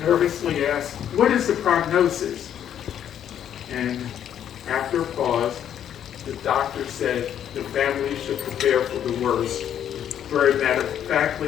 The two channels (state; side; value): quieter; right; 9.8 dB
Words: nervously asked, "What is the prognosis?" And after a pause, the doctor said the family should prepare for the worst, very